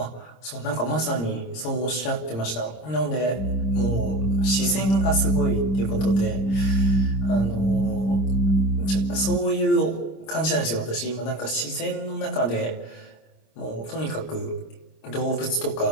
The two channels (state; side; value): late; right; 26 ms